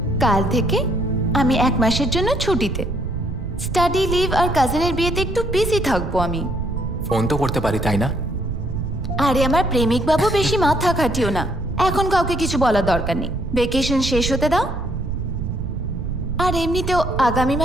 কাল থেকে আমি 1 মাসের জন্য ছুটিতে। স্টাডি লিভ আর কাজিনের বিয়েতে একটু বিজি থাকবো আমি। ফোন তো করতে পারি, তাই না? আরে আমার প্রেমিক বাবু, বেশি মাথা খাটিও না। এখন কাউকে কিছু বলার দরকার নেই। ভেকেশন শেষ হতে দাও। আর এমনিতেও আগামী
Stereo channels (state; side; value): noise; right; rumble, 5 dB below the sound